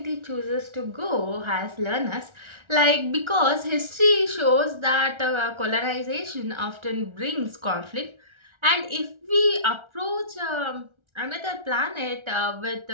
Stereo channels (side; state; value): left; late; 1.3 ms